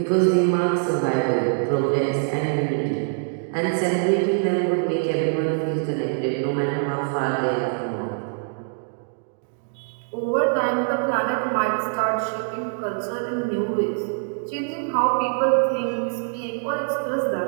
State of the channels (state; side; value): silent; left; digital silence